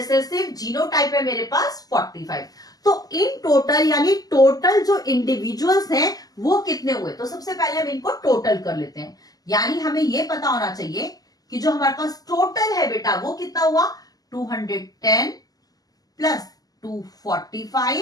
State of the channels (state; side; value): late; right; 0.18 ms